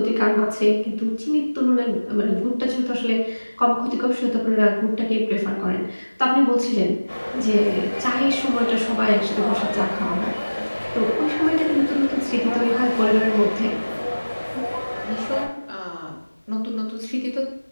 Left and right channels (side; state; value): both; inverted; correlation -1.00